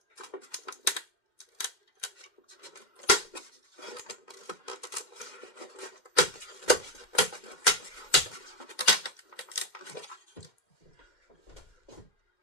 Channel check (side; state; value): right; late; 2.1 ms